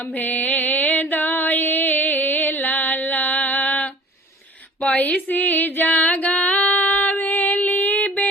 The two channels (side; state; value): both; normal; correlation 0.47